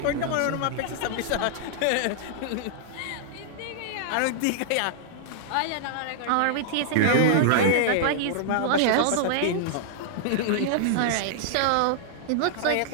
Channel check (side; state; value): both; different; correlation -0.01